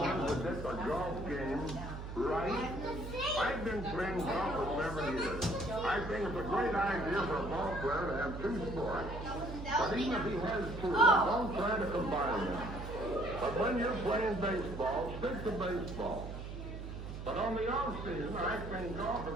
predict a golf game right? I've been playing golf for 7 years. I think it's a great idea for a ball player to have 2 sports. But even if he has 2, don't try to combine them. But when you're playing baseball, stick to baseball. But on the off season, I think golf is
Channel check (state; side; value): noise; right; hum, 8 dB below the sound